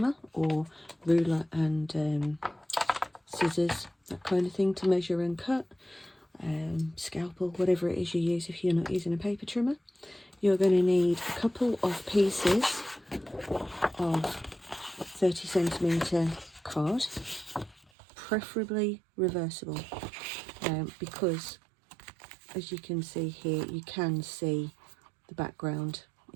or ruler and scissors, that kind of thing, to measure and cut. Scalpel, whatever it is you use if you're not using a paper trimmer. You're going to need a couple of pieces of 30cm card, preferably reversible, because as you can see here, you can see the background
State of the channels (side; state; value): left; drops out; at 17.9 s